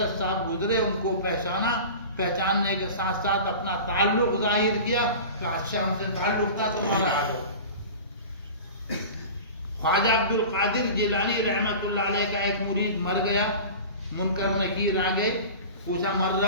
صاحب گزرے، ان کو پہچانا، پہچاننے کے ساتھ ساتھ اپنا تعلق ظاہر کیا کہ اچھا ہم سے تعلق تھا تمہارا آ جاؤ. خواجہ عبد القادر جیلانی رحمت اللہ علیہ کا ایک مرید مر گیا، منکر نکیر آ گئے، پوچھا مر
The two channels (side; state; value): both; inverted; correlation -0.35